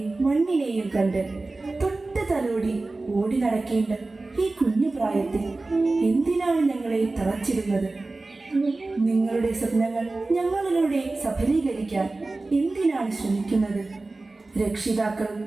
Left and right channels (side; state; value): left; quieter; 3.3 dB